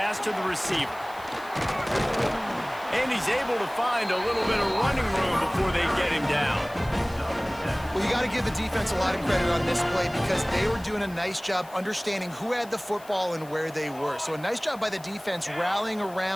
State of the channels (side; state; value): left; noise; hiss, 22 dB below the sound